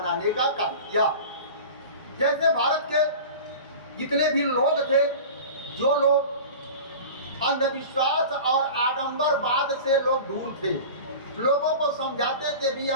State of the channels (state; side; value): inverted; both; correlation -0.35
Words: का काम किया। जैसे भारत के जितने भी लोग थे, जो लोग अंधविश्वास और आडंबरवाद से लोग दूर थे, लोगों को समझाते थे भी